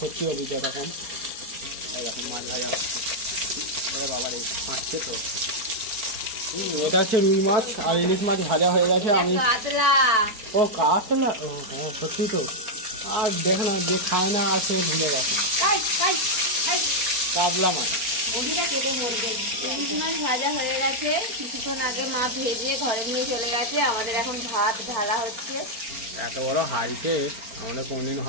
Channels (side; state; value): left; late; 4.4 ms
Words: অভিজ্ঞতা কম। এখন মাছ ভাজা হচ্ছে, বাবার এই মাছছে তো। এটা হচ্ছে রুই মাছ আর ইলিশ মাছ ভাজা হয়ে গেছে। আমি ও কাতলা, ও হ্যাঁ সত্যি তো। আর দেখ না, যে খায় না আর সে ভুলে গেছে। কাতলা মাছ ইলিশ মাছ ভাজা হয়ে গেছে, কিছুক্ষণ আগে মা ভেজে ঘরে নিয়ে চলে গেছে। আমাদের এখন ভাত ঢালা হচ্ছে। এত বড় হাড়িতে আমাদের কোনদিন